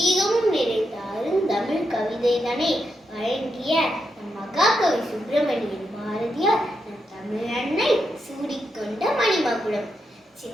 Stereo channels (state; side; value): normal; both; correlation 0.84